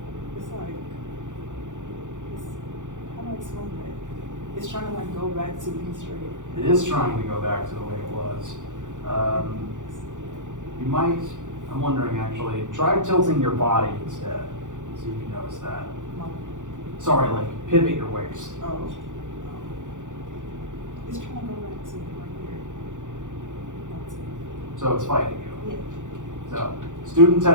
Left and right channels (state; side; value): late; left; 0.86 ms